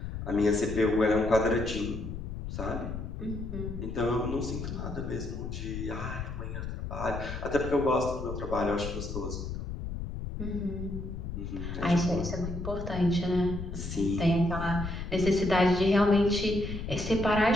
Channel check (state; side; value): noise; left; rumble, 6 dB below the sound